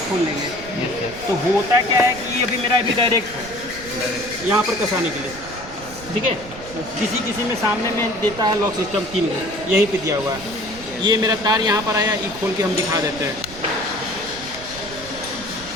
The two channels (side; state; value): right; noise; rumble, 16 dB below the sound